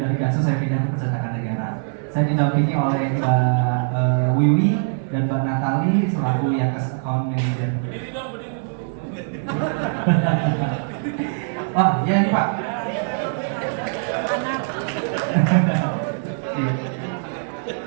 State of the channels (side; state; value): left; silent; 58 dB below the other